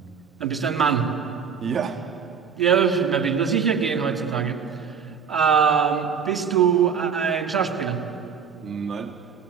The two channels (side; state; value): left; quieter; 6.7 dB